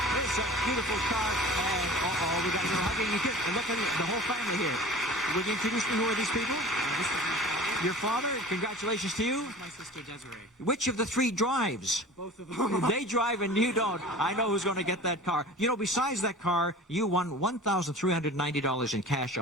It's a beautiful car. And we got to hugging you. Look at the whole family here. Would you introduce me? Who are these people? This is my father. Your father? Congratulations to you. My sister Desiree. Which of the 3 drives? Both of them. They drive and you don't. I know who's going to get that car. You know, besides that car, you won $1,390 in cash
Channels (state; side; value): normal; both; correlation 0.39